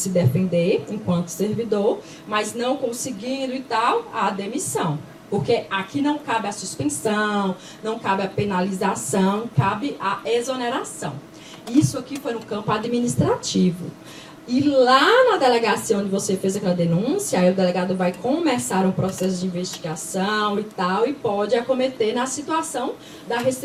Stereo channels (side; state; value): both; identical; correlation 1.00